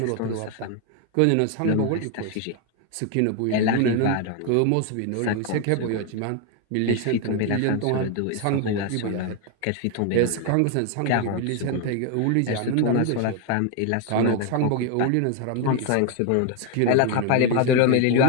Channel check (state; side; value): different; both; correlation 0.01